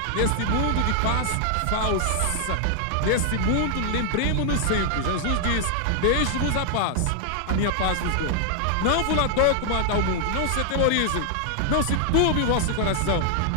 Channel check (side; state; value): both; different; correlation 0.00